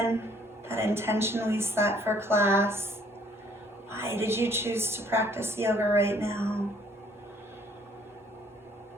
that intention we set for class. Why did you choose to practice yoga right now?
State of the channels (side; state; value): both; normal; correlation 0.62